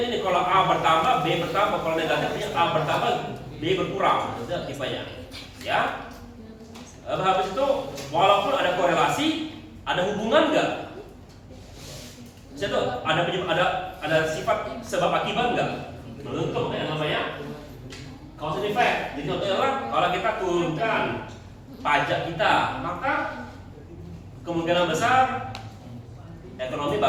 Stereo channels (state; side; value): identical; both; correlation 1.00